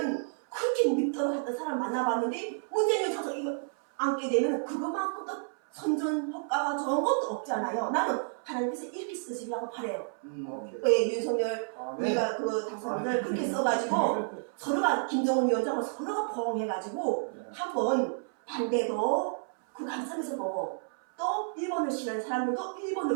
그렇게 믿도록 했던 사람 만나봤는데 문재인 위원장 이거 앉게 되면 그거만큼 또 선전 효과가 좋은 것도 없잖아요. 나는 하나님께서 이렇게 쓰시려고 바래요. 오케이. 왜 윤석열 아멘. 우리가 그 당선인을 그렇게 써가지고 서로가 김정은 위원장을 서로가 포옹해가지고 한번 반대도 그 관점에서 보고 또 일본을 싫어하는 사람들도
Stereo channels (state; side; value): silent; left; 57 dB below the other